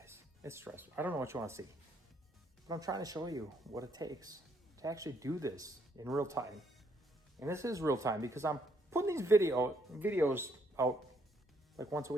It's stressful. I don't know what you want to see, but I'm trying to show you what it takes to actually do this in real time. And this is real time because I'm putting these videos out like once a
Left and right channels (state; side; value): normal; both; correlation 0.71